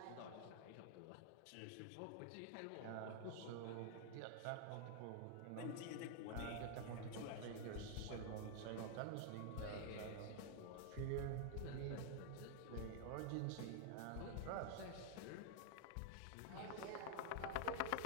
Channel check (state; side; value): different; both; correlation 0.00